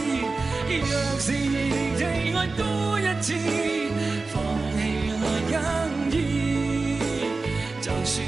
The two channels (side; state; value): left; quieter; 3.8 dB